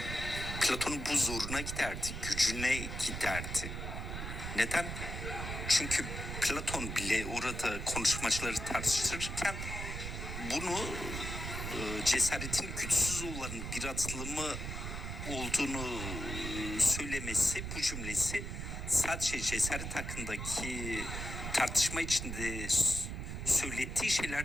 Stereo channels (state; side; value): noise; right; rumble, 5 dB below the sound